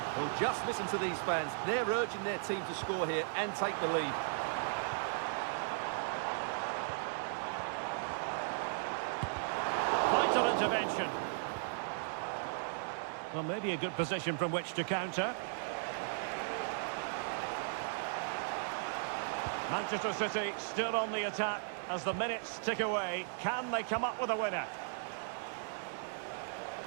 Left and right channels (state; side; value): silent; left; 53 dB below the other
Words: Well, just listen to these fans. They're urging their team to score here and take the lead. Vital intervention. Well, maybe a good position from which to counter. Manchester City still on the attack as the minutes tick away. Can they come up with a winner?